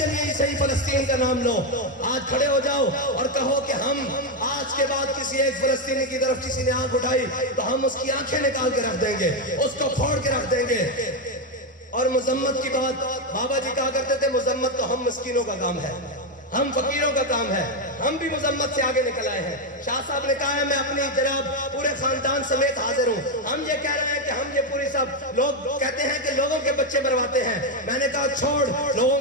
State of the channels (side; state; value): both; normal; correlation 0.06